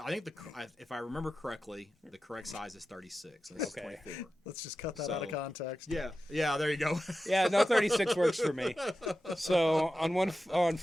think if I remember correctly, the correct size is 36. And this Okay. is 24. Let's just cut that out of So- context. Yeah, there you go. Yeah, no, 36 works for me. So on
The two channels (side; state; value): both; normal; correlation 0.92